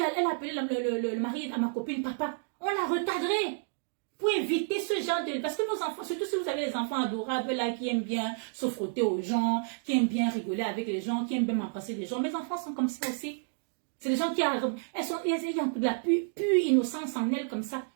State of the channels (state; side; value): silent; left; digital silence